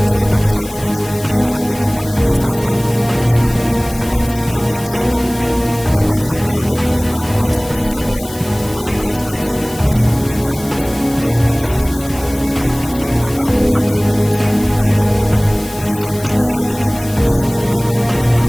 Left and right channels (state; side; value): noise; left; hiss, 16 dB below the sound